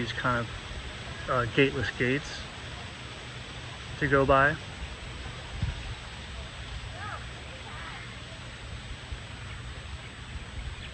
kind of gateless gates to go by.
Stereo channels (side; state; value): both; identical; correlation 1.00